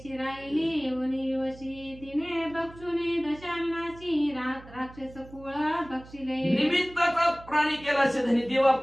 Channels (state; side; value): noise; right; hum, 19 dB below the sound